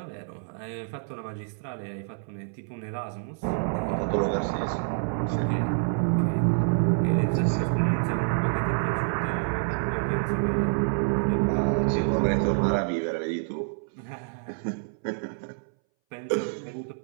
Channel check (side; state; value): left; silent; 60 dB below the other